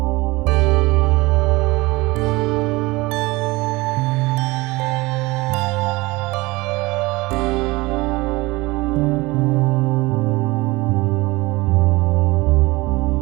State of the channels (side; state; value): left; quieter; 22.2 dB